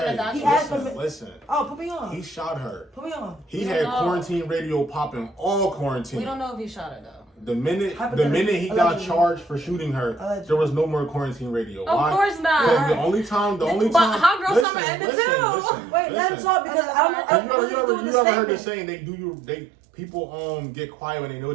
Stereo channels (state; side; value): drops out; left; at 14.7 s